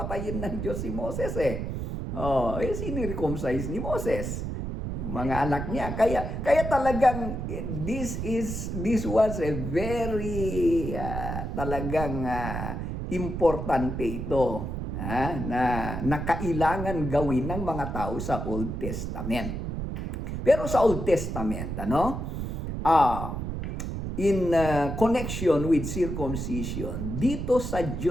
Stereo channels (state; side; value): noise; right; rumble, 4 dB below the sound